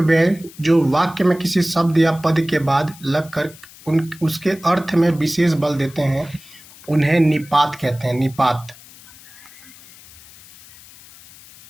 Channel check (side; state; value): left; noise; hiss, 22 dB below the sound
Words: जो वाक्य में किसी शब्द या पद के बाद लगकर उसके अर्थ में विशेष बल देते हैं उन्हें निपात कहते हैं। निपात।